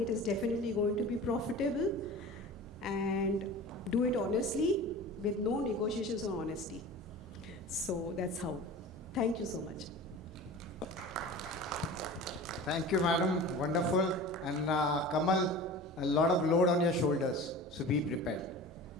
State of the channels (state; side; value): normal; both; correlation 0.37